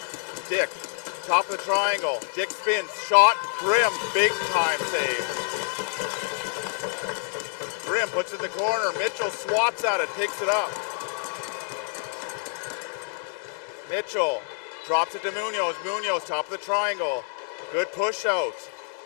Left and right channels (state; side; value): silent; right; digital silence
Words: Dick, top of the triangle. Dick spins, shot, Grimm, big time save. Grimm puts it in the corner. Mitchell swats at it, picks it up. Mitchell drops it to Munoz. Munoz, top of the triangle. Good push out.